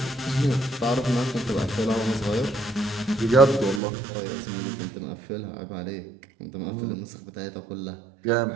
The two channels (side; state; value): left; drops out; at 3.8 s